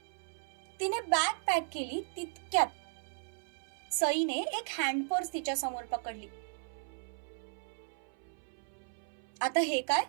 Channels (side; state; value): left; silent; 54 dB below the other